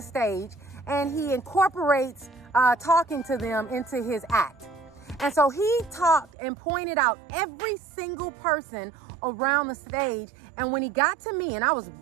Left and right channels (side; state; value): left; drops out; at 6.3 s